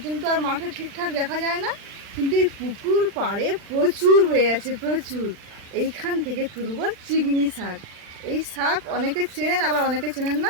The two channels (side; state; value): left; late; 40 ms